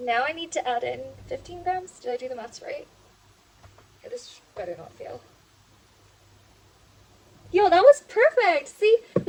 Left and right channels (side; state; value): both; identical; correlation 1.00